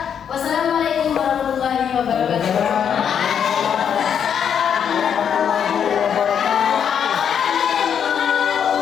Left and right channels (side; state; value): right; quieter; 8.1 dB